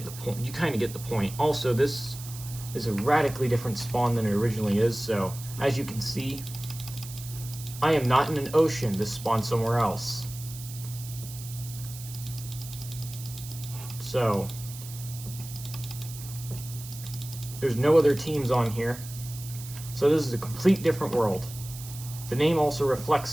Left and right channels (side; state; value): right; noise; hiss, 13 dB below the sound